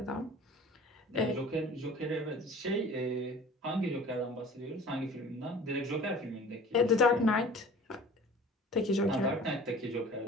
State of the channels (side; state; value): both; normal; correlation 0.45